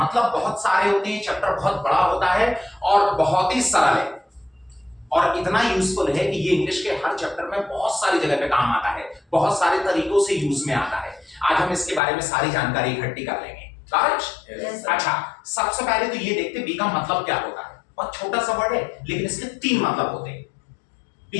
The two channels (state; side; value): drops out; right; at 12.0 s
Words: बहुत सारे होते हैं। चैप्टर बहुत बड़ा होता है और बहुत ही सरल है और इतना यूजफुल है कि ये इंग्लिश के हर चैप्टर में बहुत सारी जगह पे काम आता है, बहुत सारे तरीकों से यूज में आता है। आज हम इसके बारे में सारी जानकारी इकट्ठी कर लेंगे, करेक्ट। Yes, अच्छा, सबसे पहले तो ये देखते बी का मतलब क्या होता है। बहुत छोटा सा वर्ड है लेकिन इसके तीन मतलब होते हैं।